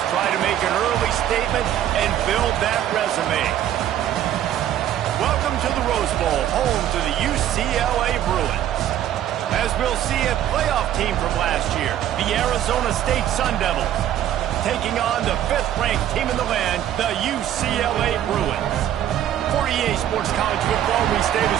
try to make an early statement and build that resume. Welcome to the Rose Bowl, home to the UCLA Bruins. As we'll see a playoff team from last year, the Arizona State Sun Devils, taking on the 5th-ranked team in the land, the UCLA Bruins. For EA Sports College Football, Reese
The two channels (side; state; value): left; quieter; 11.4 dB